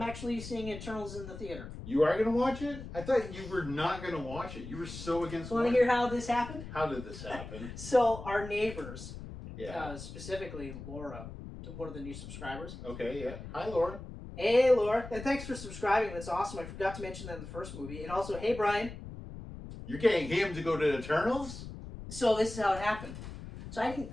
actually seeing Eternals in the theater. You are going to watch it? I thought you were not going to watch it. You were so against it. Want to hear how this happened? How did this happen? So our neighbors, specifically Laura, one of the new subscribers. Okay, yeah. Hi, Laura. Hey, Laura. And thanks for subscribing. That's awesome. I forgot to mention that in the first movie. And also, hey, Brian. You're getting him to go to Eternals? So this is how it happened. So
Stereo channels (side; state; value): left; noise; rumble, 11 dB below the sound